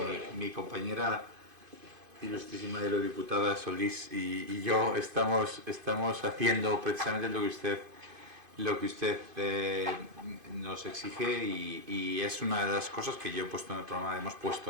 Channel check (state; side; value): late; left; 2.5 ms